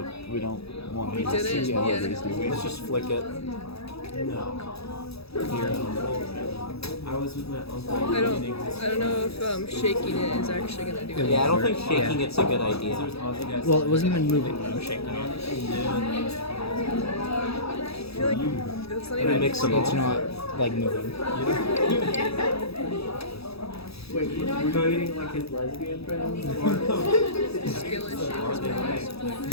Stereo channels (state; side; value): late; right; 0.77 ms